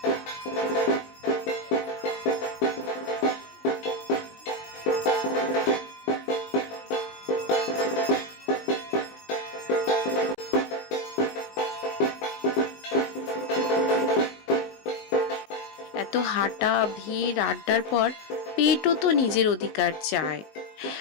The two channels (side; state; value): right; late; 20 ms